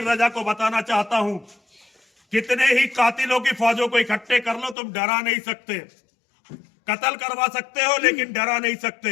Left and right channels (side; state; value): right; drops out; at 4.8 s